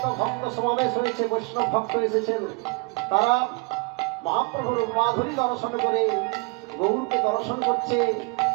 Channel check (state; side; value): quieter; left; 30.8 dB